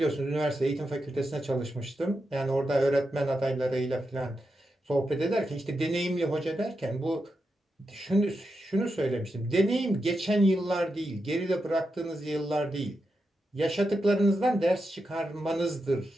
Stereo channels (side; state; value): both; normal; correlation 0.87